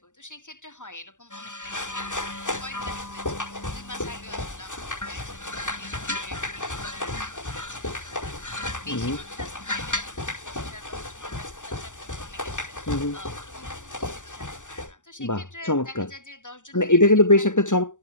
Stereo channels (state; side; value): late; right; 0.86 ms